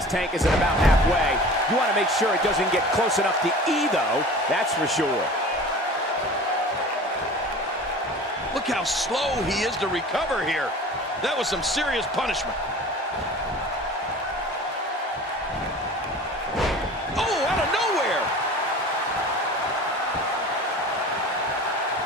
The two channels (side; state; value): both; normal; correlation 0.40